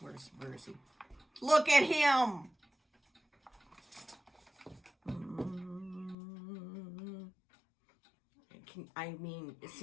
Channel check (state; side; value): drops out; right; at 6.2 s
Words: is he? Look at him! Is